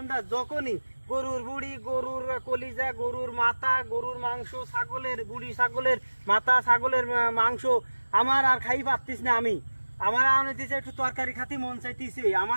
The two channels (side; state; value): both; inverted; correlation -1.00